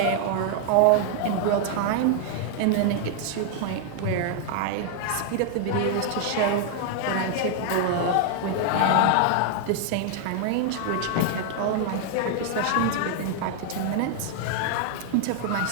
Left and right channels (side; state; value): both; different; correlation 0.00